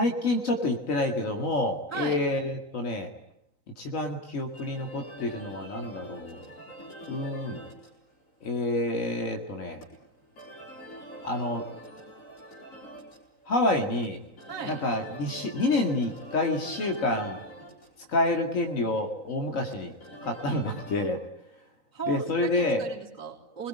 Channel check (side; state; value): right; late; 3.9 ms